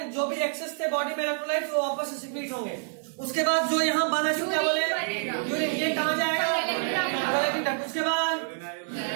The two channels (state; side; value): silent; left; 60 dB below the other